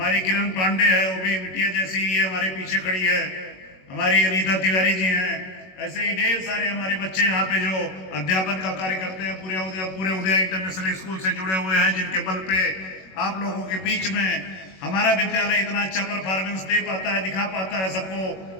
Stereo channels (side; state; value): right; late; 21 ms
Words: किरण पांडे है, वो भी बिटिया जैसी ही है, हमारे पीछे खड़ी है। हमारी अनीता तिवारी जी हैं। ऐसे ही ढेर सारे हमारे बच्चे यहाँ पे जो अध्यापन का कार्य करते हैं, पूरे उदया इंटरनेशनल स्कूल से जुड़े हुए हैं, जिनके बल पे आप लोगों के बीच में हमारा विद्यालय इतना अच्छा परफॉर्मेंस दे पाता है, दिखा पाता है,